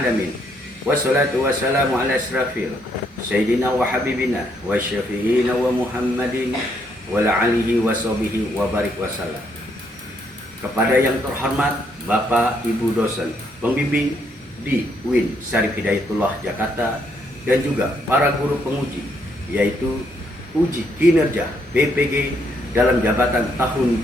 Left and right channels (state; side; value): normal; both; correlation 0.72